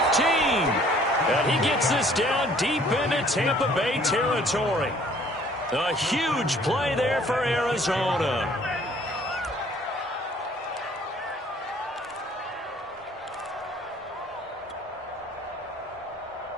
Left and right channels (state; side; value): normal; both; correlation 0.57